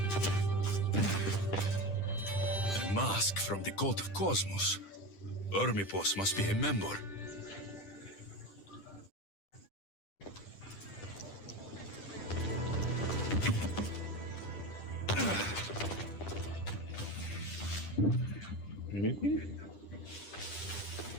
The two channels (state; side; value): late; right; 10 ms